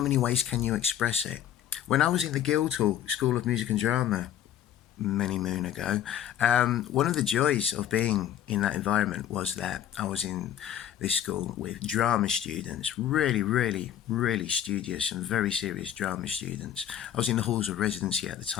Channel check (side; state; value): right; quieter; 10.5 dB